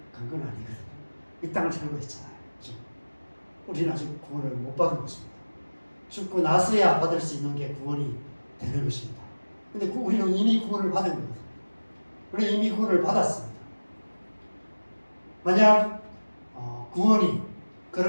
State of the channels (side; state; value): both; inverted; correlation -1.00